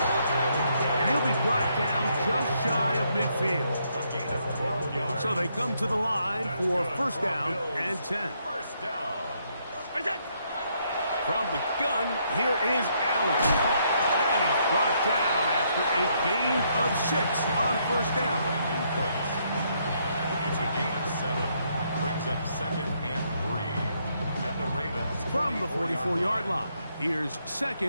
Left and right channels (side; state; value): both; inverted; correlation -0.73